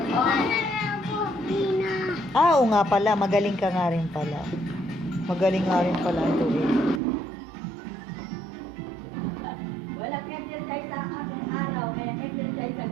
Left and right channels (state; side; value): drops out; left; at 7.0 s